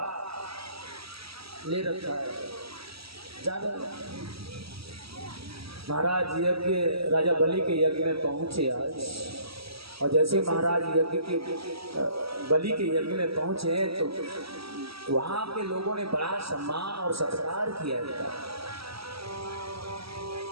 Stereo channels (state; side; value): late; left; 0.76 ms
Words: ले रखा है। महाराज यज्ञ, राजा बलि के यज्ञ में पहुंचे आज, और जैसे महाराज यज्ञ के बलि के यज्ञ में पहुंचे तो वहां के लोगों ने बड़ा सम्मान और सत्कार किया था।